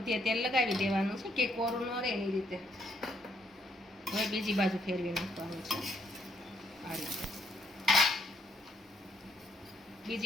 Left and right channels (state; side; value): normal; both; correlation 0.73